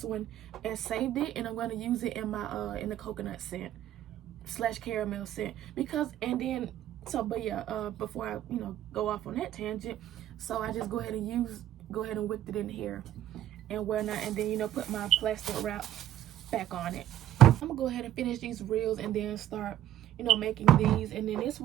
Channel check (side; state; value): left; quieter; 12.3 dB